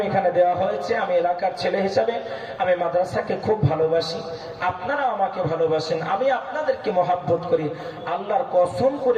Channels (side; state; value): both; identical; correlation 1.00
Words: এখানে দেওয়া হয়েছে। আমি এলাকার ছেলে হিসাবে আমি মাদ্রাসাকে খুব ভালোবাসি, আপনারা আমাকে ভালোবাসেন, আমি আপনাদেরকে মহাব্বত করি। আল্লাহর কসম